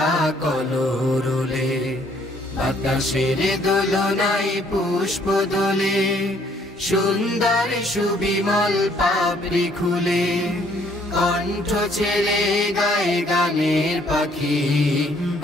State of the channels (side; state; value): both; normal; correlation 0.64